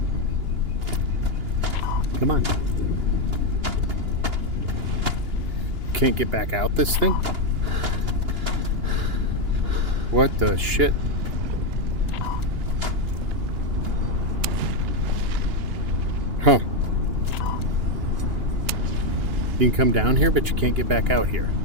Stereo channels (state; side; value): late; left; 2.9 ms